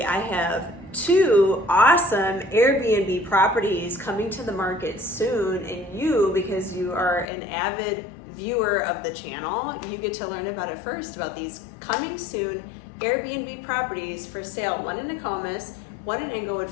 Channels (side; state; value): right; drops out; at 7.2 s